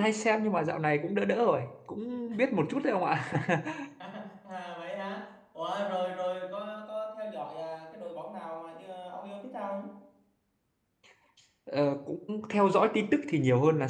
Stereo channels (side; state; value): both; identical; correlation 1.00